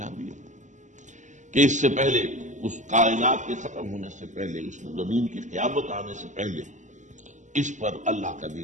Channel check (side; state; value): left; late; 0.35 ms